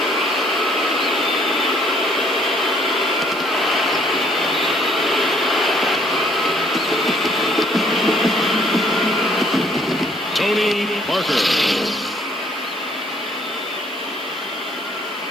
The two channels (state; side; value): noise; right; hiss, 25 dB below the sound